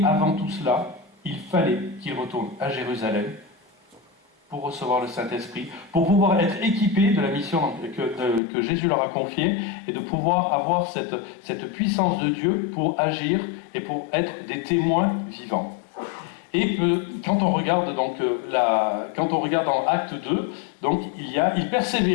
avant tout cela, il fallait qu'il retourne à Jérusalem pour recevoir le Saint-Esprit, pour pouvoir être équipé de la mission que Jésus leur a confiée, et de pouvoir avoir cette puissance de Dieu pour agir et pour être des témoins vivants. Et quand on regarde dans Acte 2, donc il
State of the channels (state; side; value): drops out; right; at 8.4 s